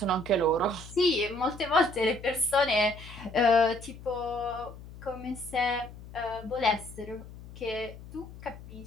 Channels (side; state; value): left; noise; hum, 16 dB below the sound